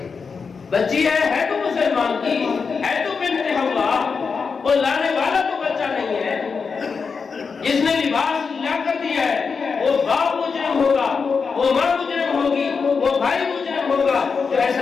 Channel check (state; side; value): quieter; right; 5.3 dB